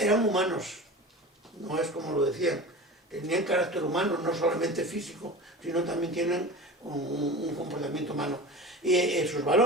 eran humanos, no es como lo decían, tenían carácter humano, no solamente físico, sino también tienen un comportamiento humano. Y esos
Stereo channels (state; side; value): normal; both; correlation 0.33